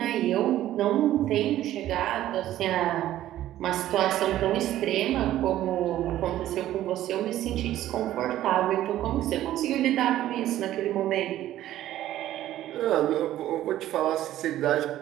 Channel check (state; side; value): quieter; left; 13.4 dB